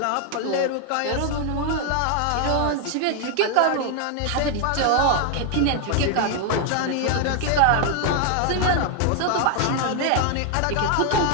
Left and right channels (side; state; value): both; different; correlation 0.00